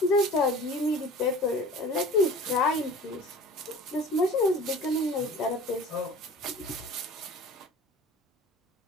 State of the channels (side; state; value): both; normal; correlation 0.41